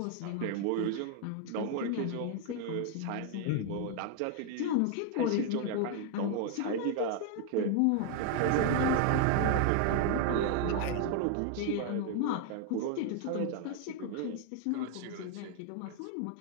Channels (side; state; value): both; different; correlation 0.00